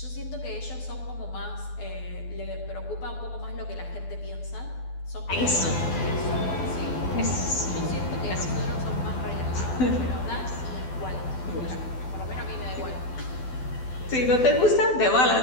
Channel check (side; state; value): right; late; 12 ms